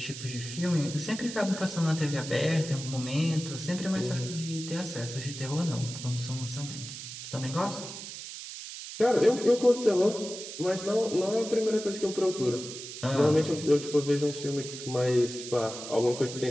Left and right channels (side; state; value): right; noise; hiss, 10 dB below the sound